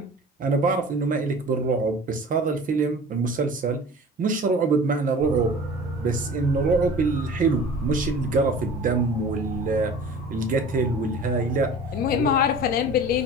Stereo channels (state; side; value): normal; both; correlation 0.41